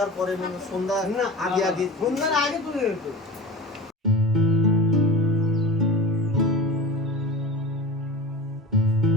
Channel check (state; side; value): normal; both; correlation 0.33